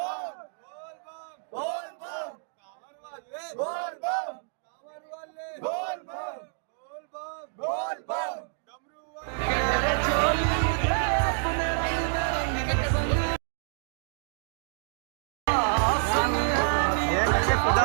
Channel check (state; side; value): silent; left; 57 dB below the other